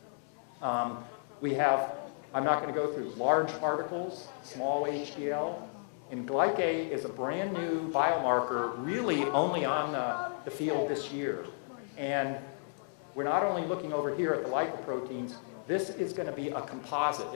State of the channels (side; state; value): right; silent; digital silence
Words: We have, I'm not going to go through large particles, small HDL, and glycate is a brand new biomarker really only on the field this year. And we're not only looking over here at the lipoproteins, this is going to be a composite.